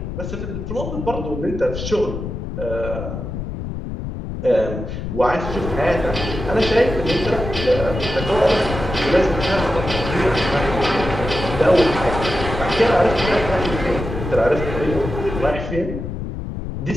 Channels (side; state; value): left; noise; rumble, 6 dB below the sound